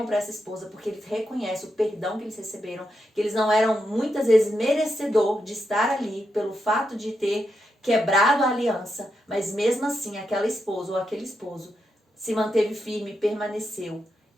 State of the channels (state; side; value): normal; both; correlation 0.84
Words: para essa esposa porque eles reconhecem o perdão que eles receberam, que eles não eram muitas vezes merecedor de estar ali pelo fato de ter quebrado a aliança, mas mesmo assim aquela esposa ou aquele esposo se manteve firme, permaneceu